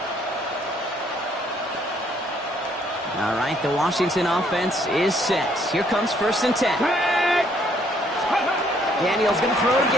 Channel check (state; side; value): normal; both; correlation 0.66